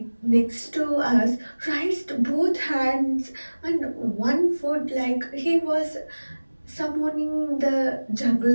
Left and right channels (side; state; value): both; inverted; correlation -1.00